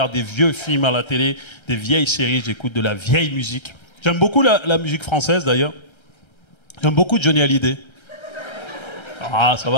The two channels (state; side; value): late; right; 1.3 ms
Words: des vieux films à la télé, des vieilles séries, j'écoute de la vieille musique. J'aime beaucoup la musique française, d'ailleurs. J'aime beaucoup Johnny Hallyday. Ah, ça